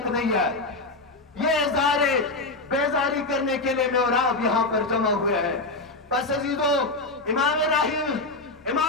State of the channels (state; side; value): quieter; right; 3.1 dB